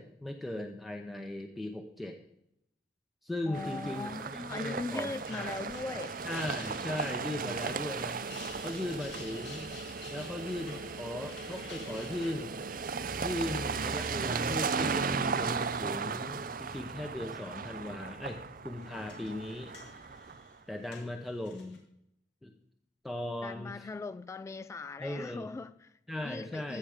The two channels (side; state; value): both; normal; correlation 0.41